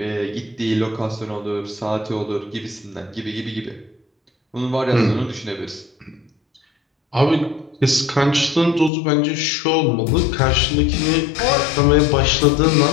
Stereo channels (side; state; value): right; drops out; at 8.9 s